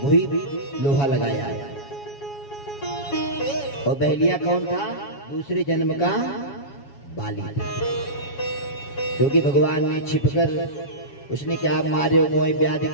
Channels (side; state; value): right; late; 7.2 ms